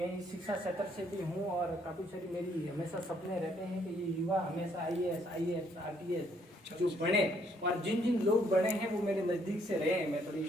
इस शिक्षा क्षेत्र से भी हूँ और काफ़ी सारी मेरी हमेशा सपने रहते हैं कि ये युवा हमेशा IAS RTS जो बने, और जिन जिन लोग बने हैं वो मेरे नज़दीक से रहे हैं। मैं थोड़ी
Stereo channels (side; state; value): both; normal; correlation 0.68